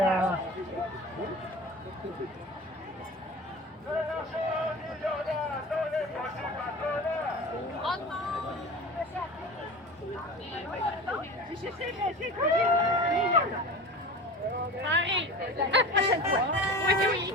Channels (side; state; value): both; normal; correlation 0.34